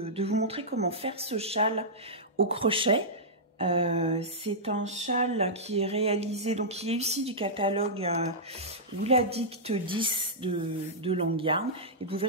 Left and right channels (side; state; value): both; normal; correlation -0.12